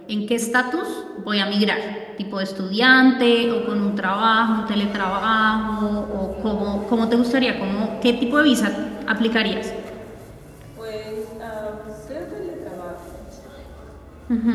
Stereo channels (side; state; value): both; identical; correlation 1.00